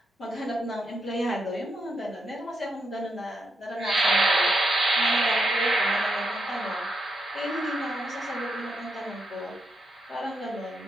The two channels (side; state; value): both; normal; correlation 0.81